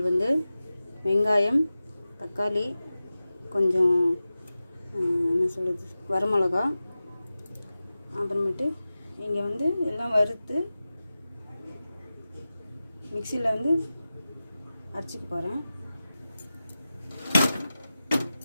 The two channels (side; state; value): both; inverted; correlation -0.95